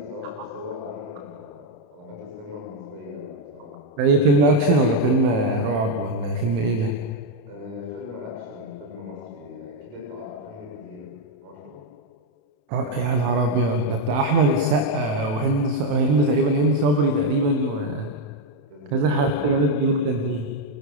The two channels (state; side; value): late; left; 27 ms